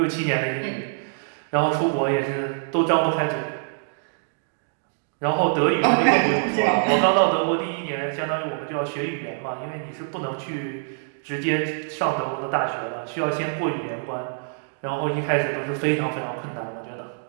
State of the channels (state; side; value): silent; left; digital silence